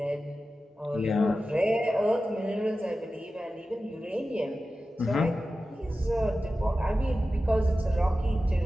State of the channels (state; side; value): normal; both; correlation 0.94